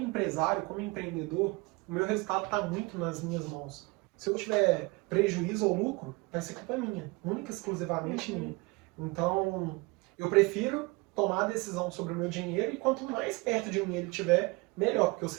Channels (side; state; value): left; quieter; 25.6 dB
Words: como empreendedor, o meu resultado está muito nas minhas mãos. Se eu tiver prejuízo ou lucro, vai ser culpa minha, única e exclusivamente minha. Então, eu prefiro tomar a decisão sobre o meu dinheiro e quanto mais perto de mim ele estiver, melhor, porque eu